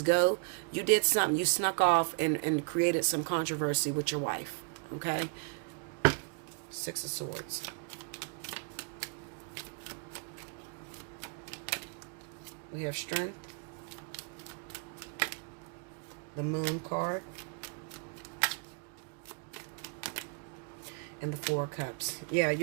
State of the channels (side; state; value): left; quieter; 38.5 dB